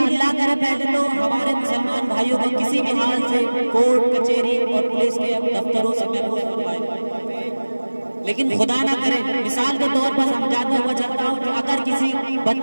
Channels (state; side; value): inverted; both; correlation -1.00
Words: اللہ کرے پہلے تو ہمارے مسلمان بھائیوں کو کسی بھی حال سے کورٹ کچہری اور پولیس کے دفتروں سے محفوظ فرمائے، لیکن خدا نہ کرے مثال کے طور پر سمجھاتا ہوا چلتا ہوں کہ اگر کسی